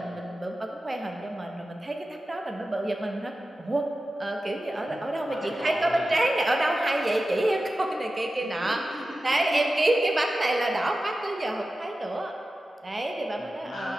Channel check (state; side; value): normal; both; correlation 0.94